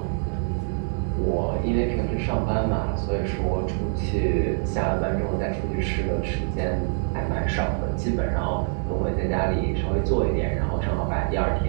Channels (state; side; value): silent; left; 62 dB below the other